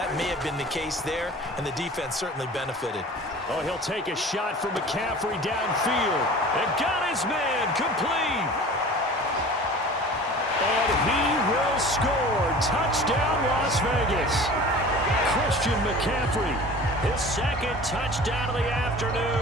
may have been the case there, and the defense certainly benefited. Oh, he'll take a shot from McCaffrey downfield. And got his man complete. And he will score. Touchdown, Las Vegas. Christian McCaffrey, his second touchdown of the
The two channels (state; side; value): normal; both; correlation 0.41